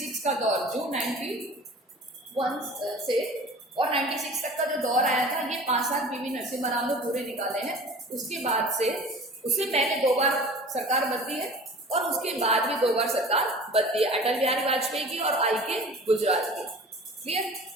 का दौर, जो 91 से और 96 तक का जो दौर आया था, ये 5 साल पीवी नरसिम्हा राव ने पूरे निकाले हैं। उसके बाद से, उससे पहले 2 बार सरकार बदली है और उसके बाद भी 2 बार सरकार बदली है, अटल बिहारी वाजपेयी की और आईके गुजराल की। Clear.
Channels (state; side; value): normal; both; correlation 0.42